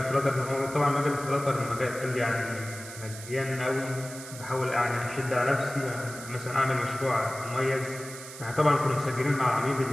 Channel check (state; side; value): noise; right; hiss, 13 dB below the sound